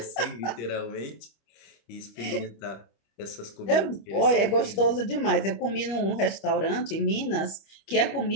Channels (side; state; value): right; late; 25 ms